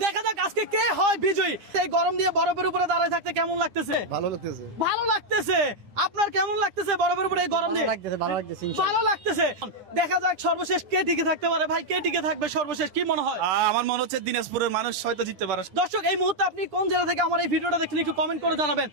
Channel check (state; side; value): late; left; 10 ms